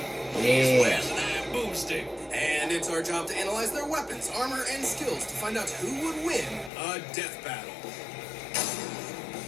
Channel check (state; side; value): drops out; right; at 6.7 s